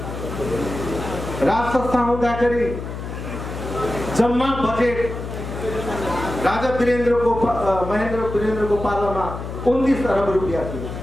राज संस्था हुँदाखेरि जम्मा बजेट राजा महेन्द्र वीरेन्द्रको पालामा 29 अरब रुपियाँ थियो।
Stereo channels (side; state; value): left; noise; hum, 8 dB below the sound